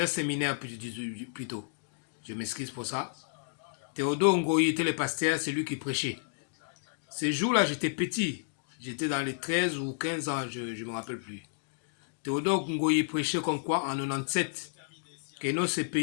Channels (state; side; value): silent; right; digital silence